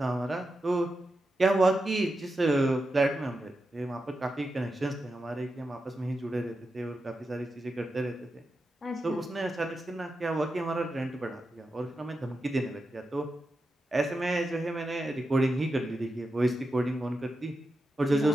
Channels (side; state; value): both; normal; correlation 0.89